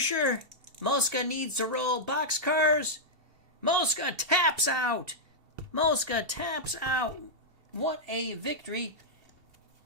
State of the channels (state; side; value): late; left; 2.7 ms